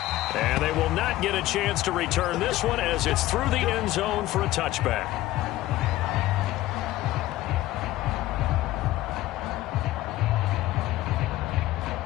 And they will not get a chance to return this one as it's through the end zone for a touchback.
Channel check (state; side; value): quieter; right; 16.1 dB